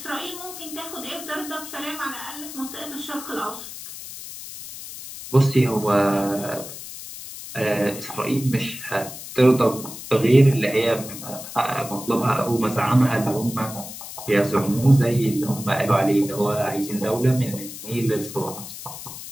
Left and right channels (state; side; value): noise; left; hiss, 12 dB below the sound